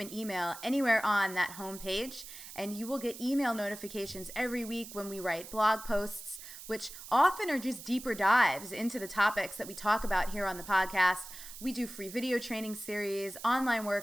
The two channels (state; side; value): noise; right; hiss, 13 dB below the sound